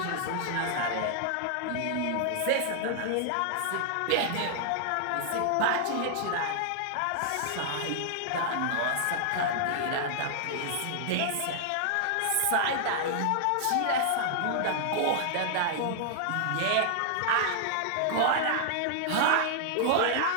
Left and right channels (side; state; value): both; different; correlation -0.01